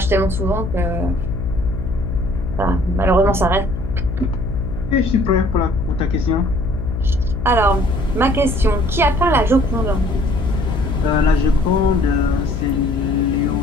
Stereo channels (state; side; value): noise; left; hum, 5 dB below the sound